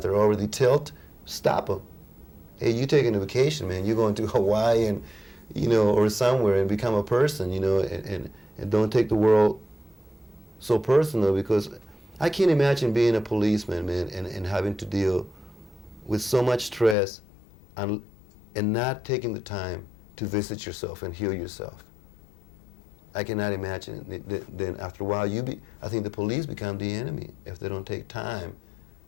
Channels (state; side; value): drops out; right; at 16.9 s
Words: already tilt? Stop them. Hey, you taking a vacation, man. You're going to Hawaii and, you know, or somewhere, and become a person, you know, and don't take the world so personal, because I can't imagine being a policeman, man, and having to deal with so much stress and not taking the time to visit yourself and heal yourself. I cannot imagine it. Then after a while, I think the police become the enemy if they don't take time